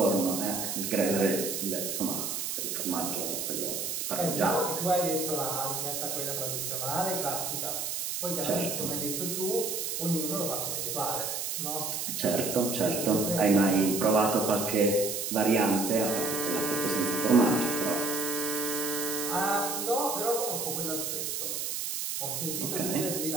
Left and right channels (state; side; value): noise; right; hiss, 3 dB below the sound